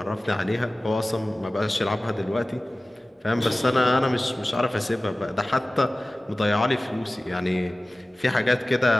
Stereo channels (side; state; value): both; normal; correlation 0.97